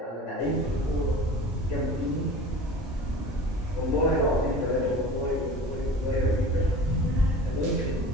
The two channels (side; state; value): both; normal; correlation 0.39